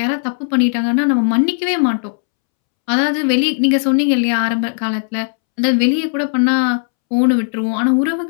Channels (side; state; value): right; silent; 69 dB below the other